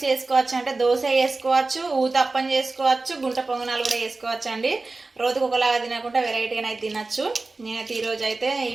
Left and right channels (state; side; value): quieter; left; 3.5 dB